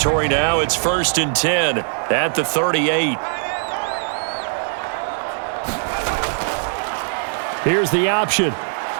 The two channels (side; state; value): left; silent; digital silence